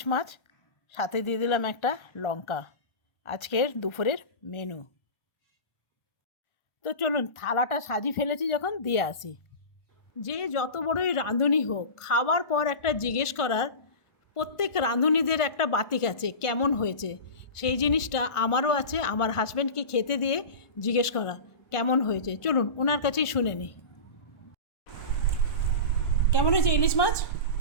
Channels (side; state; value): right; late; 1.4 ms